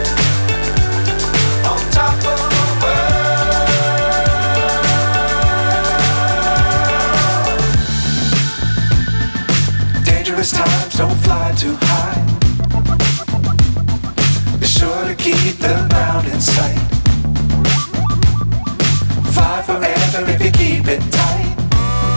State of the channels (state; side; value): inverted; both; correlation -1.00